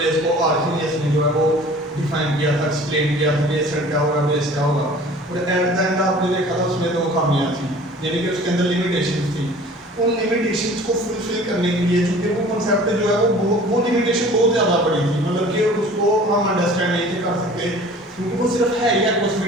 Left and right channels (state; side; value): normal; both; correlation 0.46